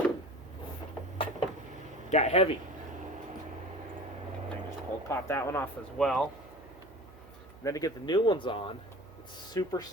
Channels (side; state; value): right; noise; hum, 21 dB below the sound